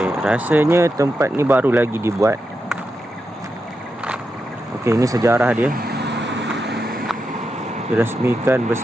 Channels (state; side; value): normal; both; correlation 0.87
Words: rasanya tempat ni baru lagi dibuat. Okey, ini sejarah dia. Dirasmikan